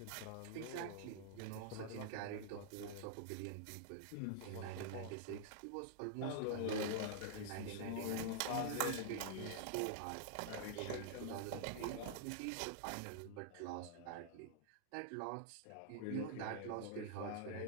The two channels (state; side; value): different; both; correlation -0.01